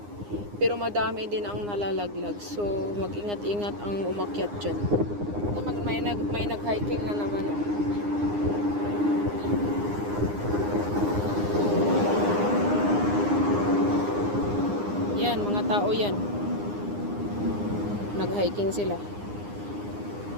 Pero madami din ang nalalaglag. So, mag-ingat-ingat ang umakyat dyan. May nag-hiking na naman. Yan, mga tao yan. Nag-hiking sila.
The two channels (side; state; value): left; late; 9.8 ms